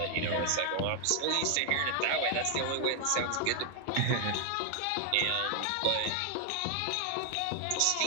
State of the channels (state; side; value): different; both; correlation 0.00